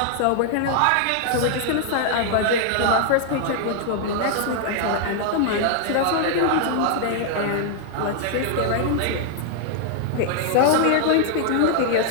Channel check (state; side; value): different; both; correlation 0.00